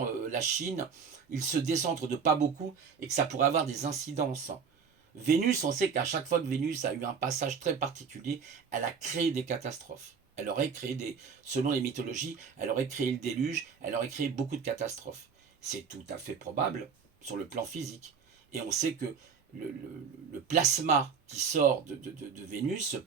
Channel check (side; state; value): left; quieter; 6.1 dB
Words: la Chine. Il se décentre de pas beaucoup et que ça pourrait avoir des incidences. Vénus, on sait qu'à chaque fois que Vénus a eu un passage très particulier, elle a créé des catastrophes. Elle aurait créé selon les mythologies, elle aurait créé le déluge, elle aurait créé beaucoup de catastrophes. C'est tout à fait probable sur le plan physique. Et on sait que le plasma qui sort de Vénus, ce